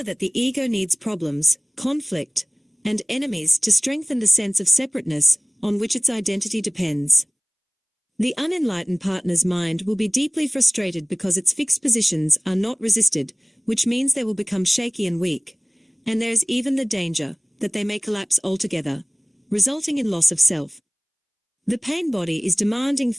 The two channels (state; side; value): identical; both; correlation 1.00